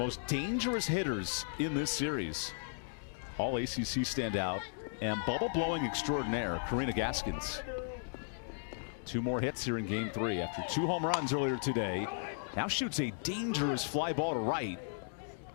dangerous hitters in this series. All ACC standout and bubble-blowing extraordinaire, Karina Gaskins. 2 more hits here in Game 3 after 2 home runs earlier today. Now shoots a dangerous fly ball to right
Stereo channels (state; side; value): silent; right; digital silence